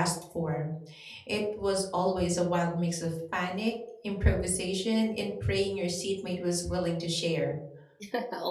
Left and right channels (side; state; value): both; identical; correlation 1.00